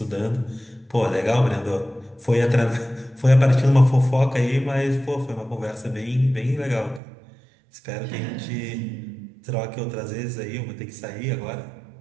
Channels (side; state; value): left; drops out; at 7.0 s